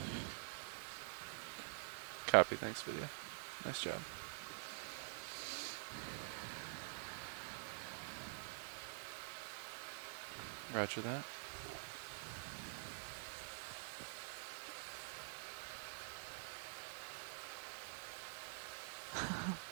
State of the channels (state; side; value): silent; left; digital silence